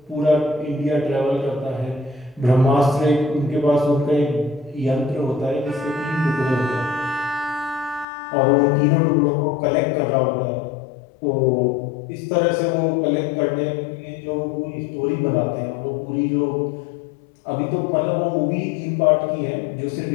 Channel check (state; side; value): drops out; right; at 8.1 s